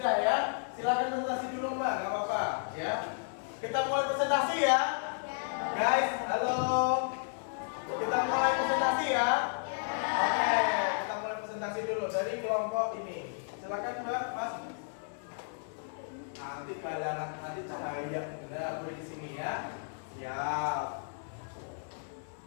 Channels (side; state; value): right; silent; 56 dB below the other